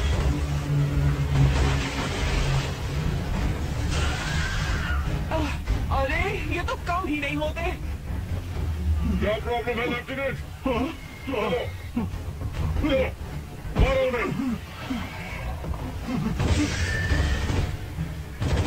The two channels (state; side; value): identical; both; correlation 1.00